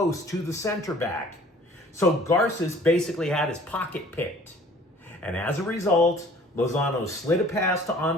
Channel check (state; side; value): normal; both; correlation 0.51